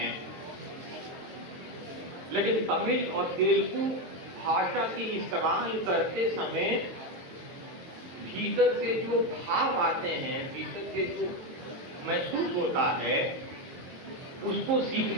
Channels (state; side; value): late; left; 23 ms